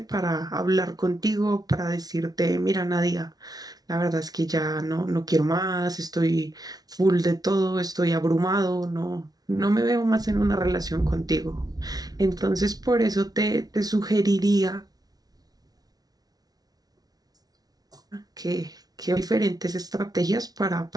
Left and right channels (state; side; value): late; left; 0.19 ms